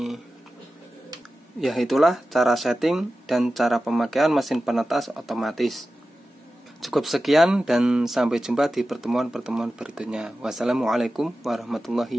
Ya, itulah cara setting dan cara pemakaian mesin penetas otomatis. Cukup sekian dan sampai jumpa di pertemuan-pertemuan berikutnya. Wassalamualaikum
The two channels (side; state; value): both; normal; correlation 0.94